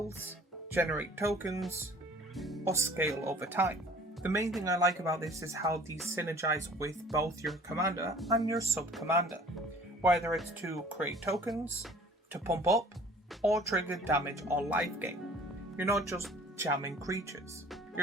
generate tokens, or scale over time. The main thing I like about this is how these synergize with both your commander and your sub-commander, whether it's to create tokens, to pump up, or trigger damage or life gain. You're not just jamming creatures.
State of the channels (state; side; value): normal; both; correlation 0.50